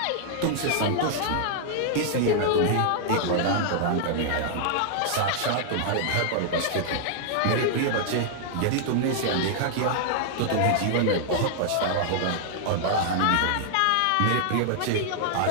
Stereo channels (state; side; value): different; both; correlation -0.01